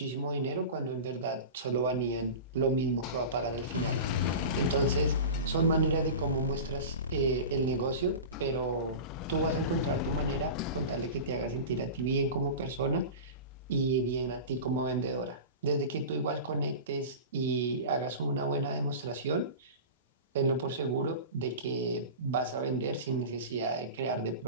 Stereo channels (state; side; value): inverted; both; correlation -0.31